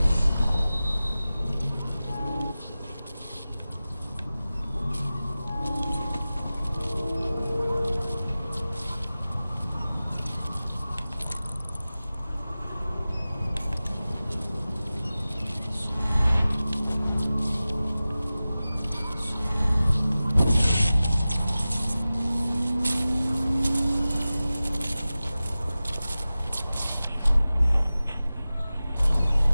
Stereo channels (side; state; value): both; inverted; correlation -0.96